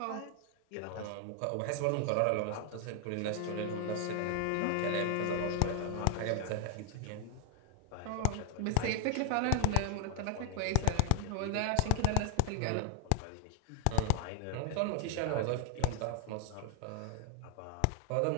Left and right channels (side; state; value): both; different; correlation 0.00